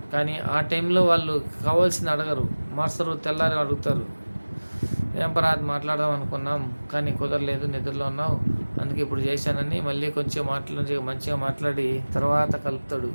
కానీ ఆ టైంలో వాళ్ళు కావాల్సింది అడగరు, మార్చరు, తెల్లారి అడుగుతారు. ఏం పరాది మాట్లాడదాం అనుకున్నాం కానీ కుదరలేదు, నిద్రలో ఉన్నావు, అందుకే ఇప్పుడు చేశానని మళ్ళీ కొంచెం మంచిగా మాట్లాడి తర్వాత కలుపుతాడు,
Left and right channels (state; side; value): inverted; both; correlation -1.00